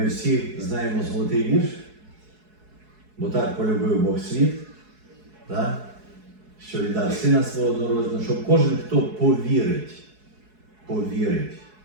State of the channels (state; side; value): late; left; 4.7 ms